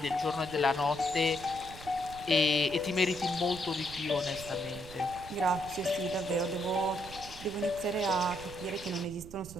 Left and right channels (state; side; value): noise; right; rumble, 15 dB below the sound